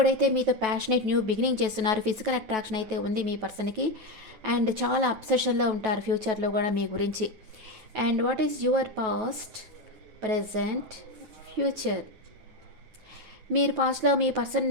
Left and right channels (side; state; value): left; late; 9.2 ms